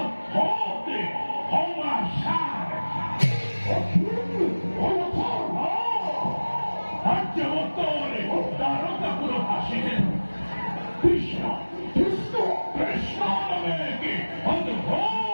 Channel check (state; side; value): inverted; both; correlation -1.00